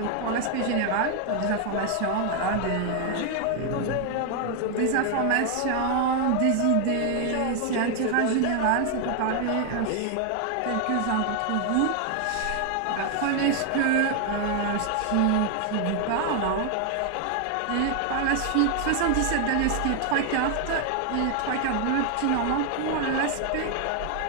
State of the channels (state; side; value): different; both; correlation 0.00